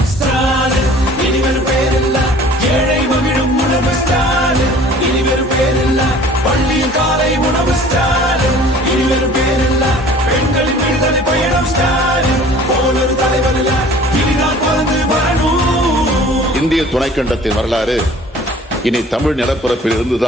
ஸ்டாலின் இனிவரும் பேரில்ல ஏழை மகிழும் உணர்வு ஸ்டாலின் இனிவரும் பேரில்ல பள்ளியில் காலை உணவு ஸ்டாலின் இனிவரும் பேரில்ல பெண்களின் விடுதலை பயணம் ஸ்டாலின் போல ஒரு தலைவர் இல்ல இனிதான் பிறந்து வரணும். இந்திய துணைக்கண்டத்தின் வரலாறு இனி தமிழ் நிலப்பரப்பில்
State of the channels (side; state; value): both; normal; correlation 0.48